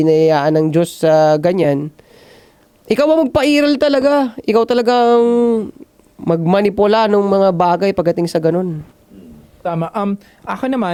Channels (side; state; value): both; identical; correlation 1.00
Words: ng Diyos sa ganyan, ikaw ang magpairal talaga. Ikaw talagang magmanipula ng mga bagay pagdating sa ganun. Tama. Ako